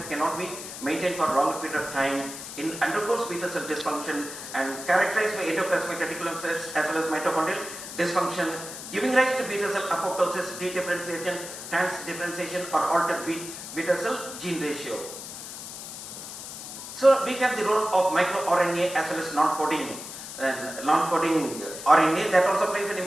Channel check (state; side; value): noise; left; hiss, 10 dB below the sound